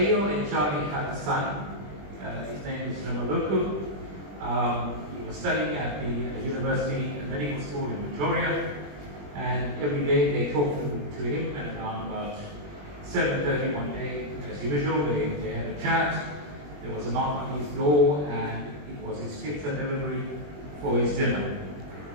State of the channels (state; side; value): late; left; 21 ms